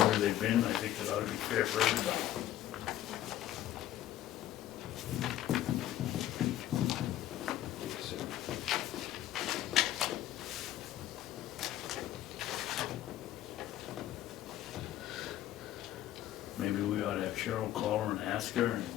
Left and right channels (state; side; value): quieter; right; 13.4 dB